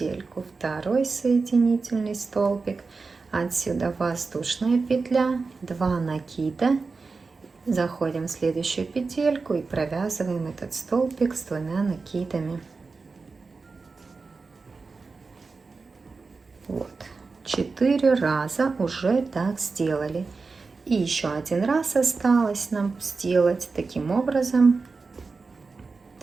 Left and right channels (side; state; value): left; quieter; 4.3 dB